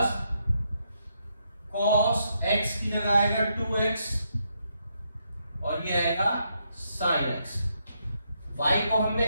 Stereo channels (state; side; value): inverted; both; correlation -0.78